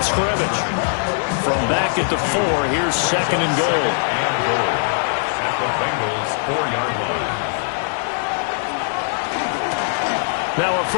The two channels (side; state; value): right; silent; digital silence